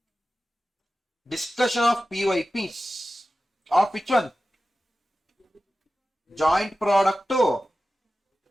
PYPs. Of which one? Joint product to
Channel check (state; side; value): normal; both; correlation 0.94